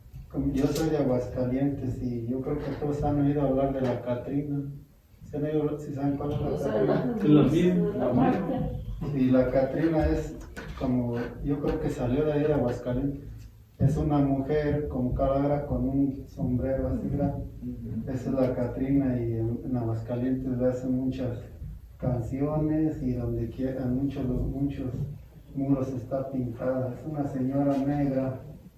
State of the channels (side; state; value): both; identical; correlation 1.00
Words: yo soy de Aguascalientes y yo creo que todos han oído hablar de la Catrina. ¿Sí saben cuál es la Catrina? Es la misma. Y la Catrina es como, yo creo que salió de ahí de Aguascalientes. Es una mujer con calavera con un sombrero así grande. Esa es la Catrina y en Aguascalientes le hacen muchas canciones y donde quiera, muchos muros está pintada. Es una señora negra,